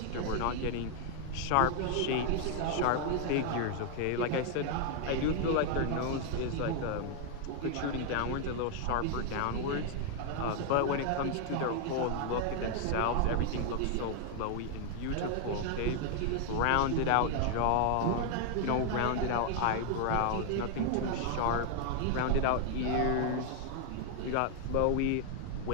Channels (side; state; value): both; different; correlation 0.00